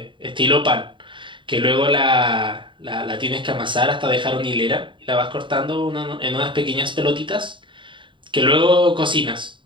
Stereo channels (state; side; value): late; left; 0.24 ms